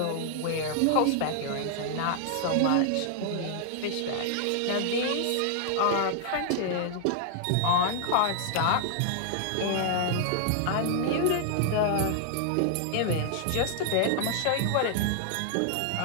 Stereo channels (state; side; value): different; both; correlation -0.01